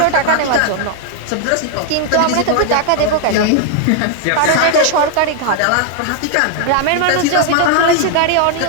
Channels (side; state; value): both; different; correlation 0.00